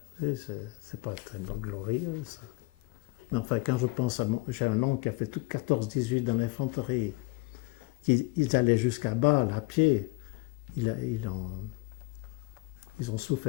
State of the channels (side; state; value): right; quieter; 24.4 dB